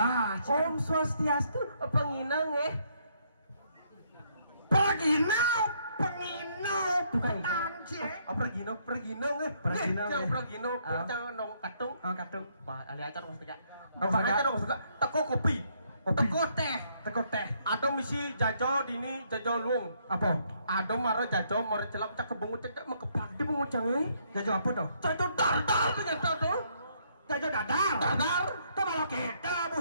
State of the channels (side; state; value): both; inverted; correlation -0.71